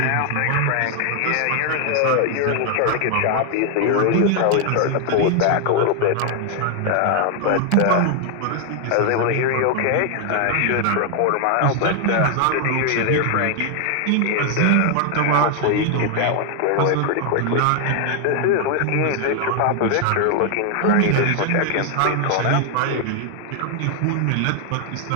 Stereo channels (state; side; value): different; both; correlation 0.00